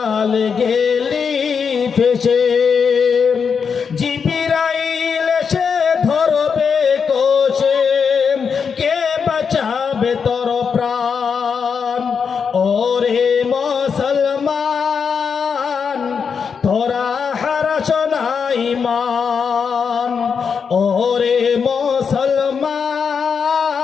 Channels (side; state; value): right; quieter; 6.2 dB